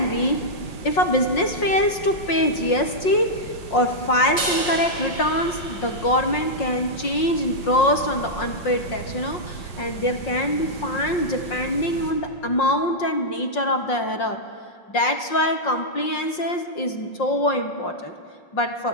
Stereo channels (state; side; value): late; right; 5.6 ms